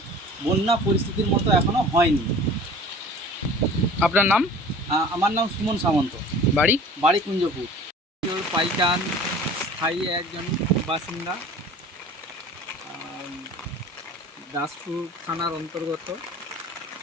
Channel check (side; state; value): both; normal; correlation 0.44